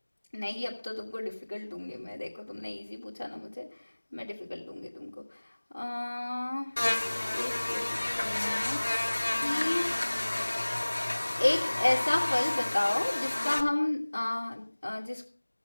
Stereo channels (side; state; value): both; inverted; correlation -1.00